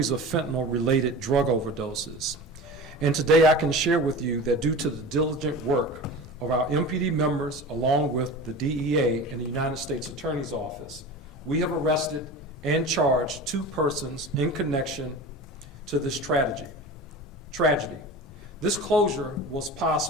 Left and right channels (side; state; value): both; normal; correlation 0.33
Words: of fentanyl-related drug overdoses. And today I can share with you that due to the diligent work of our MPD members, along with the DEA and the United States Attorney's Office, we have arrested and charged 2 persons in connection to this tragedy. This closure was